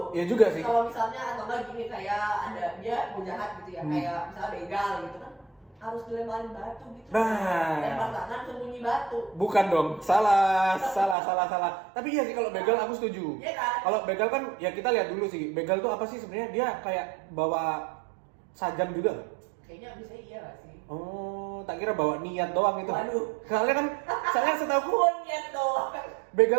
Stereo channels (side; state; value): left; drops out; at 11.2 s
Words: Ya juga sih. Kalau misalnya atau enggak gini kayak ada dia mau jahat gitu ya, kayak misalnya begal gitu kan harus dilemparin batu gitu. Nah. Lempar tangan sembunyi batu. Bukan dong, salah. Tapi iya sih kalau begal aku setuju. Iya kan? Kalau begal kan ya kita lihat dulu sih, begal tuh apa sih sebenarnya? Dia kayak bawa sajam juga nggak? Kayaknya bisa iya gak sih? Oh, tak kira bawa niat doang itu. Waduh. Soalnya setahu Niat doang.